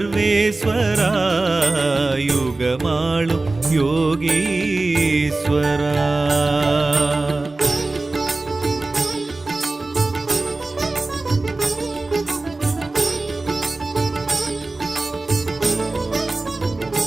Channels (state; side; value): quieter; left; 3.2 dB